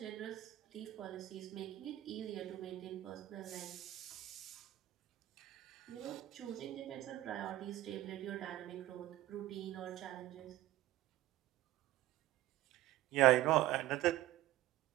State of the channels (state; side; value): quieter; left; 15.5 dB